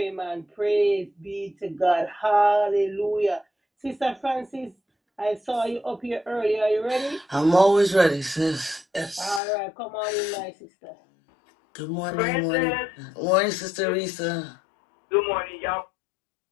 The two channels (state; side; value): drops out; right; at 9.4 s